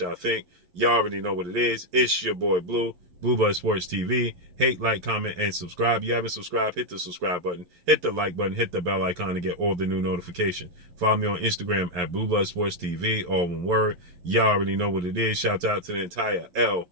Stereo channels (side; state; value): left; late; 11 ms